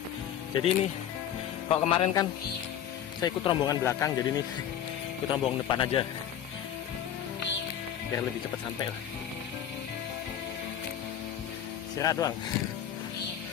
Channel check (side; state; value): right; quieter; 9.9 dB